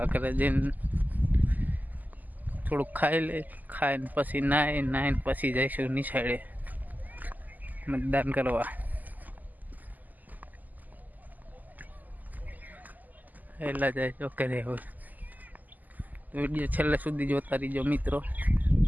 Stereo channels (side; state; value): left; late; 0.082 ms